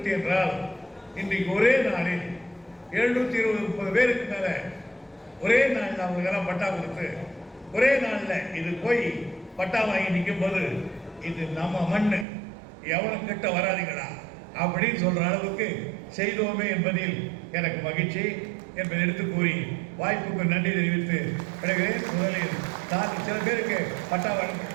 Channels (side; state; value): left; drops out; at 12.2 s